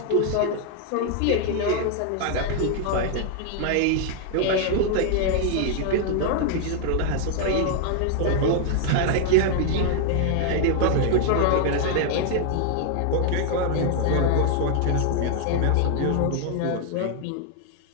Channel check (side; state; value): both; different; correlation 0.00